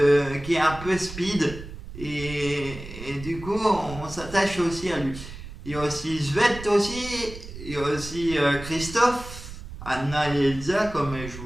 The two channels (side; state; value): right; noise; rumble, 13 dB below the sound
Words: peu speed et du coup on s'attache aussi à lui. Il y a aussi Svet aussi, il y a aussi Christophe, Anna et Elsa comme je